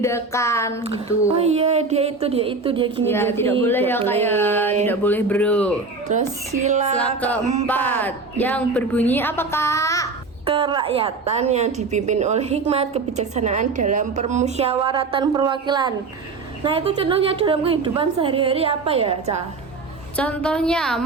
gitu. Oh iya, dia gini. Ya, tidak boleh ya, Kak ya. Tidak boleh, bro. Terus Sila keempat yang berbunyi apa, Kak? kerakyatan yang dipimpin oleh hikmat kebijaksanaan dalam permusyawaratan perwakilan. Nah, itu contohnya dalam kehidupan sehari-hari apa ya, Ca? Contohnya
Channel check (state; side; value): quieter; left; 4.0 dB